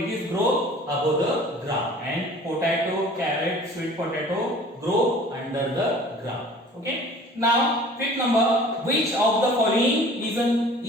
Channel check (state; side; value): normal; both; correlation 0.47